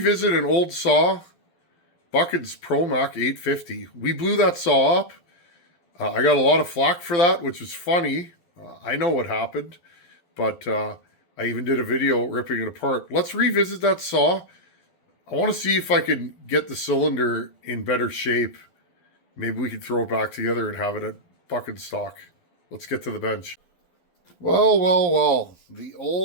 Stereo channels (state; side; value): late; right; 12 ms